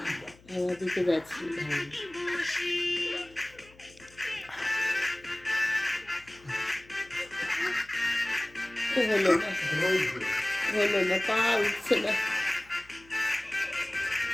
আমার দিকে যাচ্ছি হলো না হলো না পা উঠছে না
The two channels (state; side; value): noise; left; hum, 26 dB below the sound